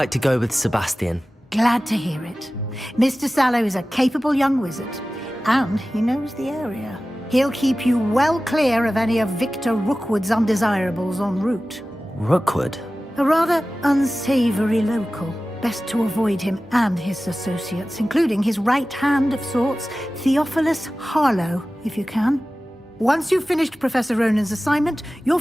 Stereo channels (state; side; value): normal; both; correlation 0.96